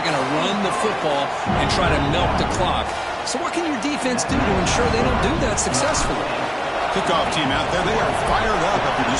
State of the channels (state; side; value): identical; both; correlation 1.00